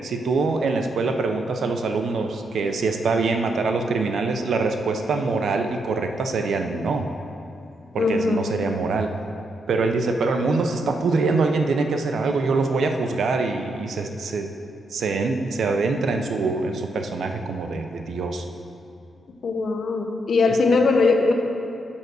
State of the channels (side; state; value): both; normal; correlation 0.78